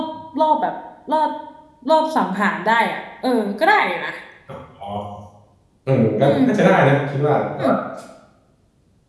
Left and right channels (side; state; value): both; identical; correlation 1.00